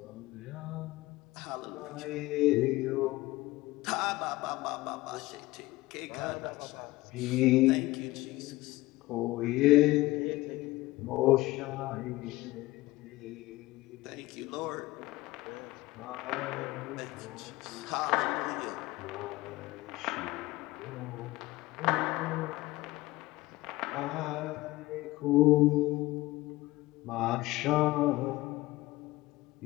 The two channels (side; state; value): right; quieter; 19.1 dB